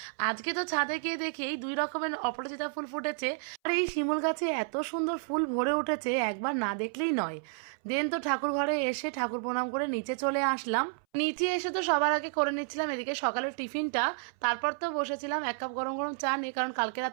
আজকে তো ছাদে গিয়ে দেখি 2 রকমের অপরাজিতা ফুল ফুটেছে আর এই শিমুল গাছে এত সুন্দর ফুল ভরে উঠেছে, একবার না দেখলেই নয়। দেন তো ঠাকুর ঘরে এসে ঠাকুর প্রণাম করে নিচে চলে আসলাম। নিচে এসে তো সবার আগে করে নিচ্ছিলাম এদিকে সকালের টিফিনটা, তারপর তো বসেছিলাম 1 কাপ গরম গরম চা নিয়ে, কারণ কালকে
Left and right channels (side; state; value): left; silent; 57 dB below the other